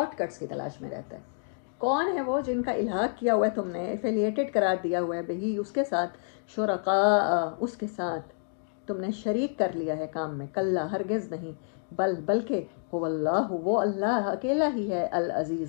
کٹس کی تلاش میں رہتا ہے۔ کون ہے وہ جن کا الحاق کیا ہوا ہے تم نے، ایفیلیٹڈ قرار دیا ہوا ہے بہی اس کے ساتھ، شرکاء اس کے ساتھ تم نے شریک کر لیا ہے کام میں، کلا ہرگز نہیں، بلکہ هو اللہ، وہ اللہ اکیلا ہی ہے،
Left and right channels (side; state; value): right; silent; digital silence